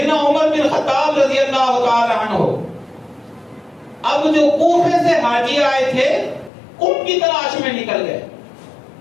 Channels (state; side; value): drops out; right; at 6.5 s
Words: عمر بن خطاب رضی اللہ تعالی عنہ اب جو کوفے سے حاجی آئے تھے ان کی تلاش میں نکل گئے۔